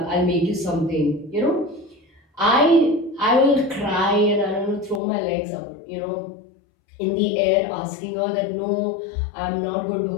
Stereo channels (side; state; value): right; drops out; at 5.0 s